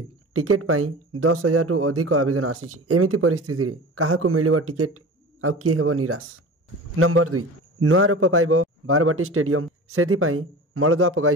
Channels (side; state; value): both; normal; correlation 0.35